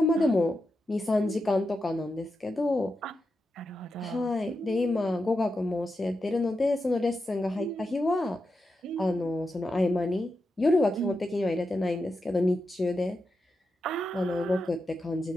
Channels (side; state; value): both; normal; correlation 0.88